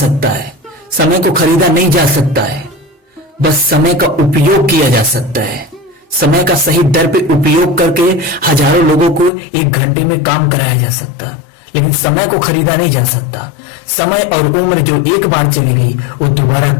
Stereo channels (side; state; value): right; drops out; at 9.3 s